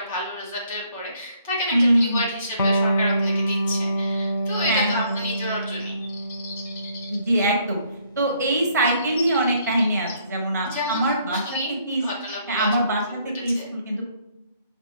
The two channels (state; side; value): inverted; both; correlation -0.67